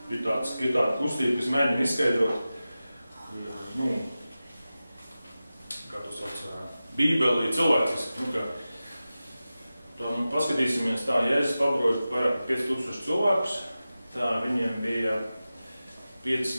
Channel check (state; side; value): inverted; both; correlation -0.95